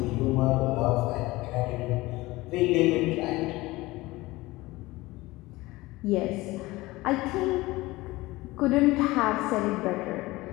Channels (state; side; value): quieter; right; 20.0 dB